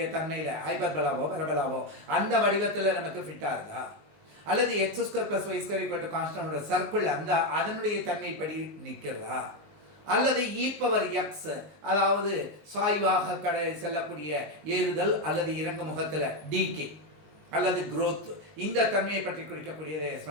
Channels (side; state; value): left; late; 19 ms